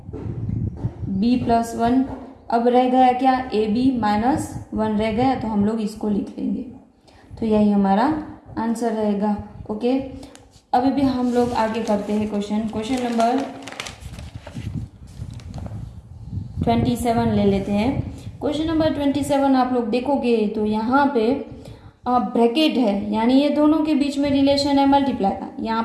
b प्लस 1। अब रह गया क्या, ए बी माइनस 1 रह गया, तो हम लोग इसको लिख लेंगे, तो यही हमारा आंसर रहेगा। ओके, अभी भी हम लोग आगे करते हैं क्वेश्चन नंबर 27 ले लेते हैं। क्वेश्चन नंबर 27 आप लोग देखोगे तो यहाँ पे ब्रैकेट है, यानी ये दोनों के बीच में रिलेशन है मल्टीप्लाई का, यहाँ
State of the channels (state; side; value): identical; both; correlation 1.00